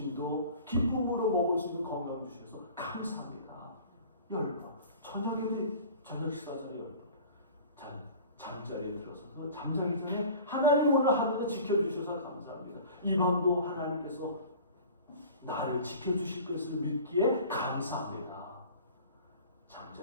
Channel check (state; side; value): inverted; both; correlation -0.43